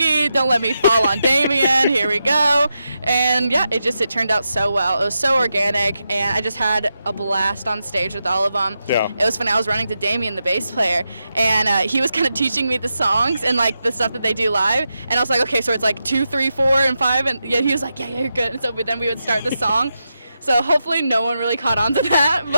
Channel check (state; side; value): inverted; both; correlation -0.87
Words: Don't let me fall on Damien. Here we go. And yeah, it turned out so well. It was so organic, and I just had a blast on stage with all of them. Yeah. It was funny. I was running to Damien, the bass player, and he was kind of teaching me the songs and like the stuff that they do live. And I was like, okay, so it's like 2, 3, 4, and 5. And yeah, he was like, yeah, you're good. And so then we would start the song. So hopefully no one really caught on to that,